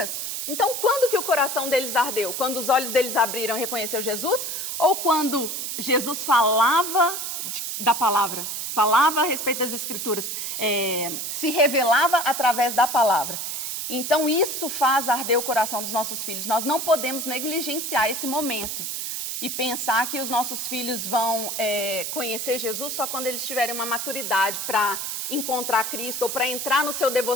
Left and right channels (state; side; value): noise; right; hiss, 4 dB below the sound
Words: Então, quando que o coração deles ardeu? Quando os olhos deles abriram e reconheceu Jesus? Ou quando Jesus falava da palavra? Falava a respeito das Escrituras? Se revelava através da palavra? Então, isso faz arder o coração dos nossos filhos. Nós não podemos negligenciar esse momento e pensar que os nossos filhos vão conhecer Jesus só quando eles tiverem uma maturidade para encontrar Cristo ou para entrar no seu